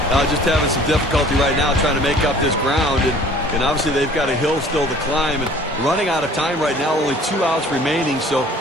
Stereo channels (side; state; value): both; normal; correlation 0.51